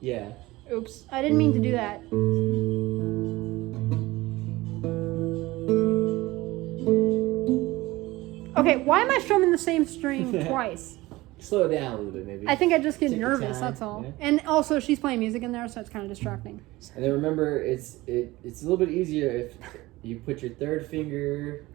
Yeah. Oops, I didn't mean to do that. Okay, why am I strumming the same string twice? Slow it down a little bit, maybe. I think I just get Take your nervous. time, That's all. yeah. And also, she's playing music in there, so it's kind of distracting. And then remember, it's a little bit easier if you put your third finger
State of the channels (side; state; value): left; quieter; 19.5 dB